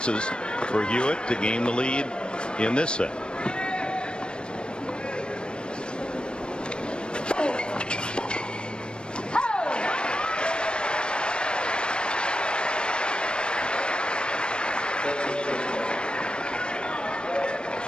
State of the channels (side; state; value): right; late; 0.054 ms